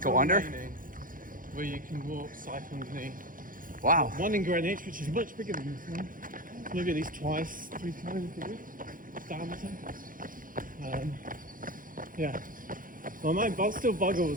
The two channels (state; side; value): late; left; 0.40 ms